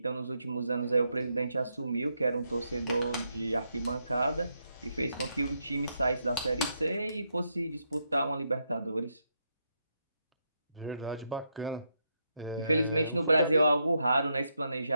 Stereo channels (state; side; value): inverted; both; correlation -0.80